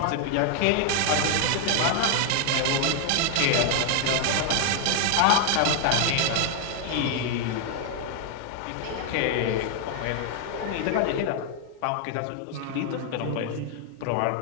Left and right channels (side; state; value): both; different; correlation 0.00